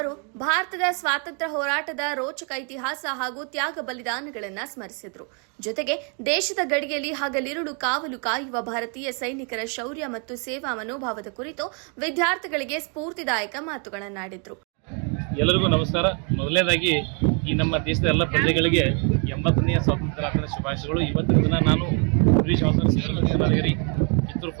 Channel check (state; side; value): quieter; left; 38.5 dB